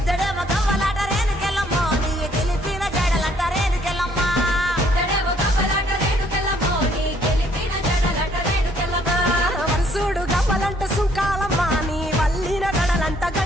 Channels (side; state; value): both; normal; correlation 0.64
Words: గవ్వలాట రేణుకెళ్ళమ్మ నీ గెలిపిన జడలంట రేణుకెళ్ళమ్మ వరుసుడు గవ్వలంట సుంకాలమ్మ నీ వల్లిన గడలంట